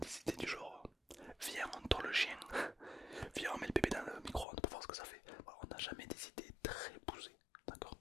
idées du genre viens on tord le chien, viens on met le bébé dans le micro-ondes pour voir ce que ça fait. Voilà, on n'a jamais des idées très poussées. D'accord,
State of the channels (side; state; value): right; drops out; at 4.5 s